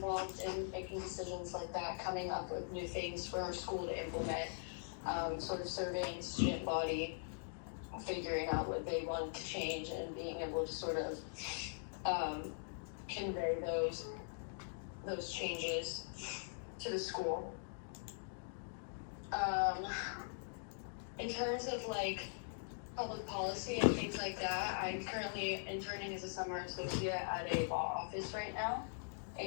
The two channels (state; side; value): silent; right; digital silence